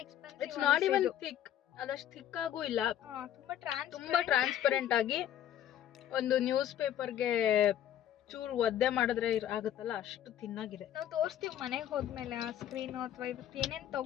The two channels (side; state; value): right; quieter; 11.1 dB